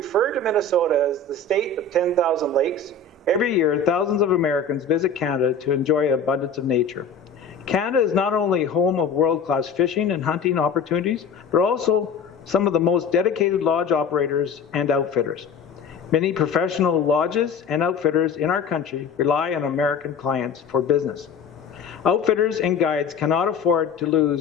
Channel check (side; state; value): right; quieter; 4.7 dB